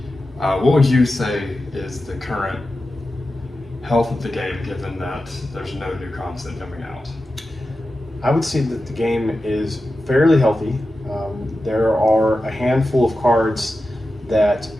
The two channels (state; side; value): normal; both; correlation 0.92